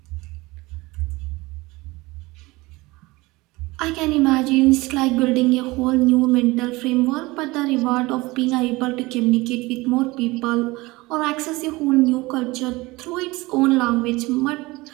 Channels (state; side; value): quieter; left; 21.8 dB